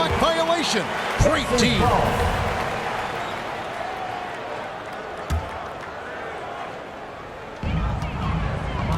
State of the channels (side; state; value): both; identical; correlation 1.00